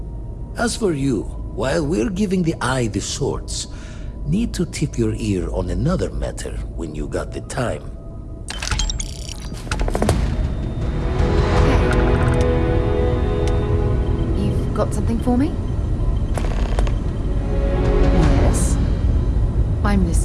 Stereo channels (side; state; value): both; identical; correlation 1.00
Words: As for you, while we're giving the eye the sorts, need to tip your ear on another matter when you got the time. Hey. You've got something for me? Yes. I'm